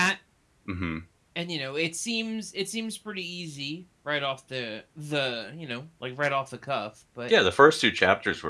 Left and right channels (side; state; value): both; identical; correlation 1.00